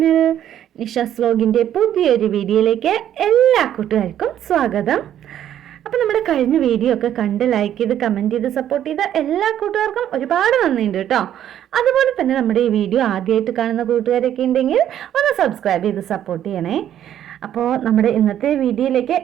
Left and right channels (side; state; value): left; quieter; 10.8 dB